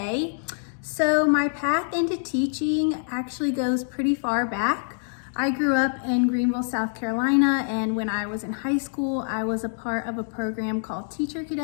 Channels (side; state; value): right; silent; digital silence